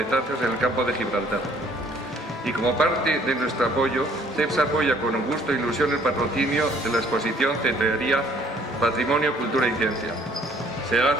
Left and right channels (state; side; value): normal; both; correlation 0.59